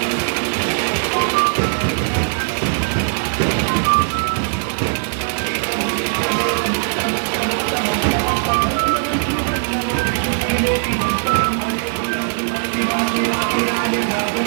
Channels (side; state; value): left; silent; digital silence